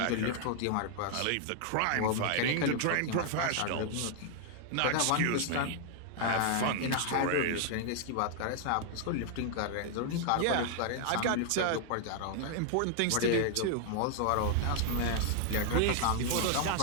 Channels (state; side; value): different; both; correlation 0.00